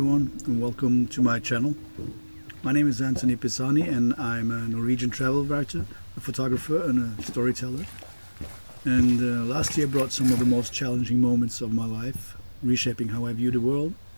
and welcome to my channel. My name is Anthony Pisani and I'm a Norwegian travel writer, a photographer and a storyteller. And last year brought some of the most challenging moments of my life, reshaping how I view the world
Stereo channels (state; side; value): inverted; both; correlation -1.00